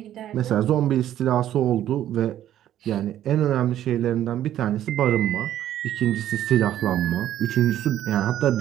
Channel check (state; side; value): quieter; left; 11.9 dB